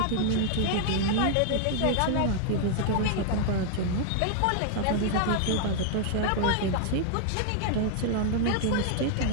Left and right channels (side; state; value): both; different; correlation 0.00